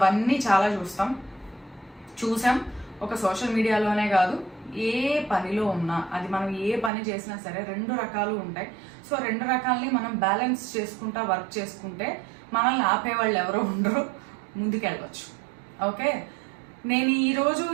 చాలా చూసాం. ఒక సోషల్ మీడియాలోనే కాదు, ఏ పనిలో ఉన్నా, అది మనం ఏ పని చేసినా సరే 2 రకాలు ఉంటాయి. సో 2 రకాలని మనం బ్యాలెన్స్ చేసుకుంటా వర్క్ చేసుకుంటే మనల్ని ఆపేవాళ్ళు ఎవరో ఉండరు, ముందుకెళ్ళవచ్చు. ఓకే, నేను ఈరోజు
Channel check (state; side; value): drops out; left; at 6.9 s